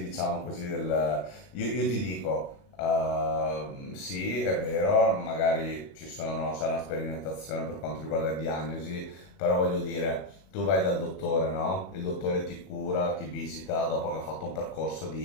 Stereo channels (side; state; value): right; late; 21 ms